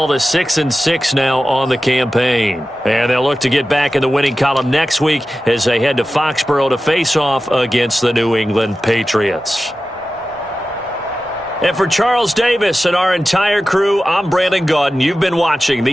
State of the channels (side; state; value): both; normal; correlation 0.94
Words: to 6-6 now on the campaign. And they'll look to get back in the winning column next week as they head to Foxborough to face off against the New England Patriots. And for Charles Davis and our entire crew, I'm Brandon Gaudin. You've been watching